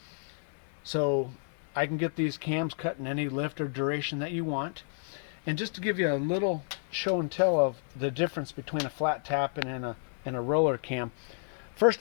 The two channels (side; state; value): right; silent; 57 dB below the other